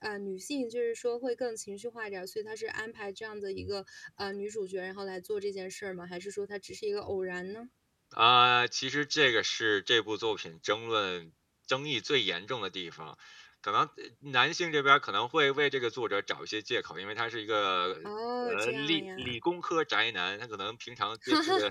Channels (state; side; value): identical; both; correlation 1.00